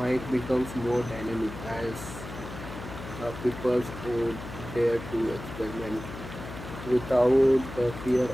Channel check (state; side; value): noise; left; hum, 11 dB below the sound